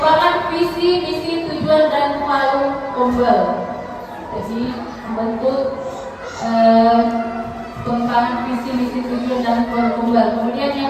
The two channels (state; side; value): identical; both; correlation 1.00